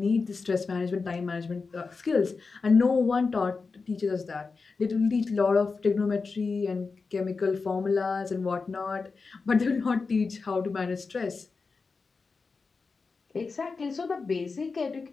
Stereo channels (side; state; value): right; quieter; 4.5 dB